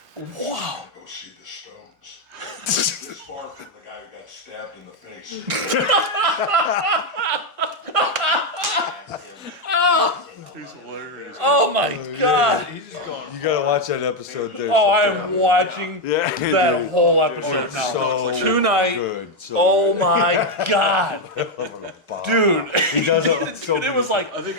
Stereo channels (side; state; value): both; normal; correlation 0.04